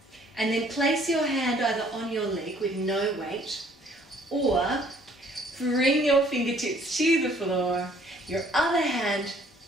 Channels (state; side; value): normal; both; correlation 0.60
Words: and then place your hand either on your leg with no weight, or bring your fingertips to the floor, your other hand